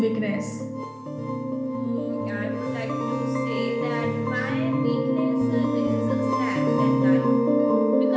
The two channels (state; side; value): identical; both; correlation 1.00